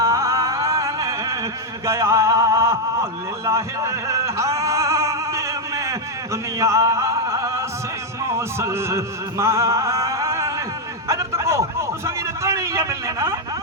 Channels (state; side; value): normal; both; correlation 0.02